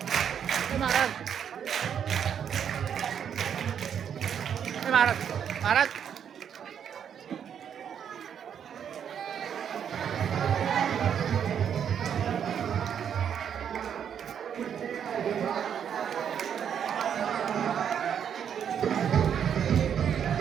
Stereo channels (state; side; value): quieter; left; 8.4 dB